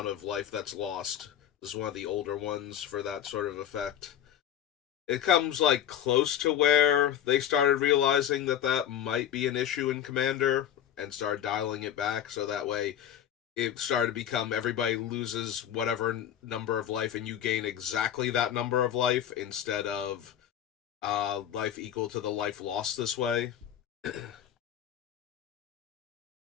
of life that's lost. This is one of the older ones for that sort of effect. It comes, like, close to where they started realizing that that might be an issue in Commander and started dialing it back, so that way it started to become everybody loses whatever number of life and you gain exactly that number of life instead of life equal to the life lost this way.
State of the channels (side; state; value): right; quieter; 10.2 dB